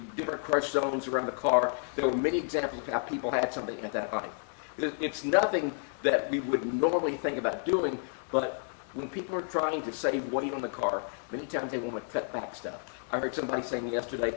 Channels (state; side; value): silent; right; 57 dB below the other